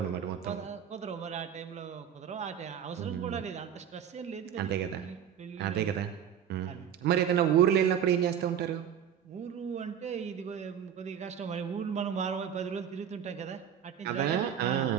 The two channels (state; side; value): quieter; left; 8.9 dB